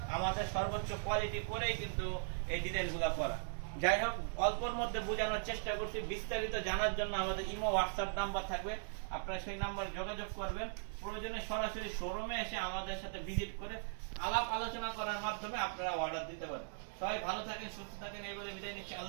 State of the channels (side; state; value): left; silent; digital silence